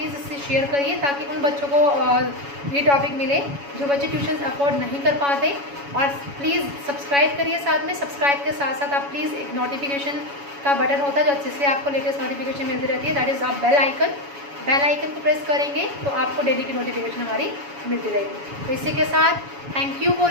इससे शेयर करिए ताकि उन बच्चों को ये टॉपिक मिले जो बच्चे ट्यूशन अफोर्ड नहीं कर पाते। और प्लीज़ सब्सक्राइब करिए साथ में, सब्सक्राइब के साथ साथ आप प्लीज़ एक नोटिफिकेशन का बटन होता है जो जिससे आपको लेटेस्ट नोटिफिकेशन मिलती रहती है, दैट इज़ आप बेल आइकन। बेल आइकन को प्रेस करेंगे तो आपको डेली की नोटिफिकेशन हमारी मिलती रहेगी। तो इसी के साथ thank you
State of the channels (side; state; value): left; late; 7.1 ms